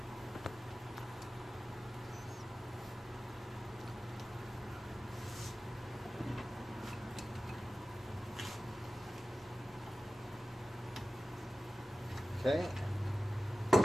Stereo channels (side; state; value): both; normal; correlation 0.95